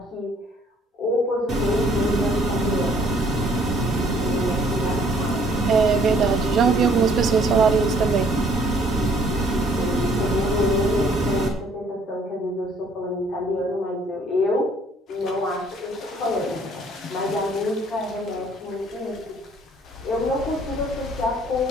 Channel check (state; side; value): normal; both; correlation 0.60